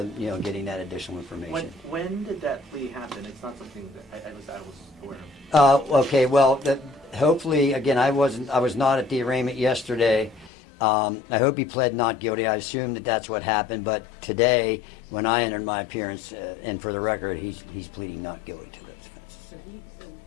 getting that additional information. When did that plea happen? It's not something that I was aware of. Okay, well, hopefully, again, I was not at the arraignment yesterday. I hope he pled not guilty. I assume that that's what happened. But today, when I entered my appearance, and for the record, he's pleading not guilty to this offense. So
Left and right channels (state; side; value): drops out; right; at 10.5 s